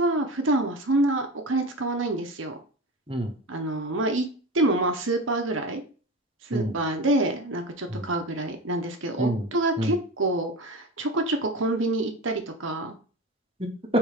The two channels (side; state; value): both; normal; correlation 0.27